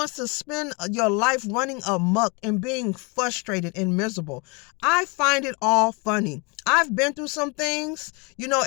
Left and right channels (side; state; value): right; quieter; 30.8 dB